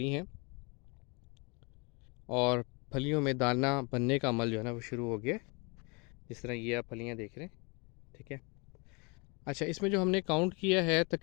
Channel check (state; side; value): quieter; right; 30.5 dB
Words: हैं और फलियों में दाना बनने का अमल जो है ना वो शुरू हो गया। जिस तरह ये आप फलियां देख रहे हैं, ठीक है। अच्छा, इसमें जो हमने काउंट किया है